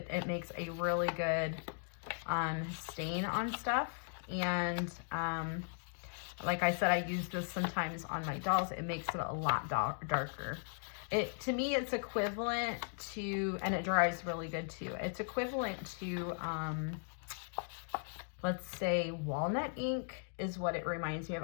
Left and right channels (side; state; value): right; silent; digital silence